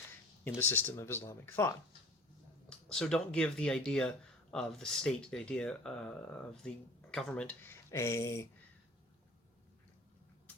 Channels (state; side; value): normal; both; correlation 0.45